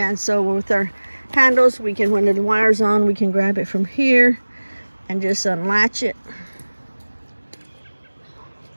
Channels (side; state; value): both; inverted; correlation -1.00